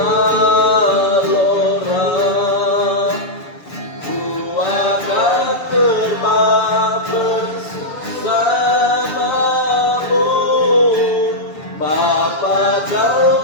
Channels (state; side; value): late; right; 7.1 ms